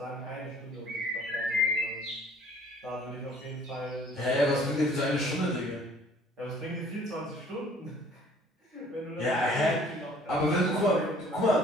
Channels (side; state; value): both; normal; correlation 0.55